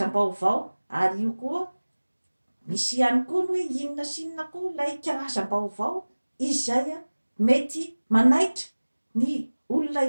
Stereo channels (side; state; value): both; inverted; correlation -1.00